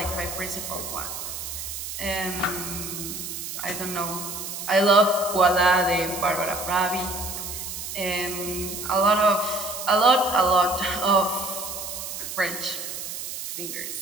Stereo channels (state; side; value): noise; right; hiss, 7 dB below the sound